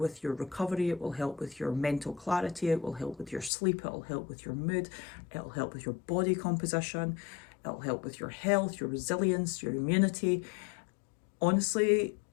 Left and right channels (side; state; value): right; drops out; at 3.5 s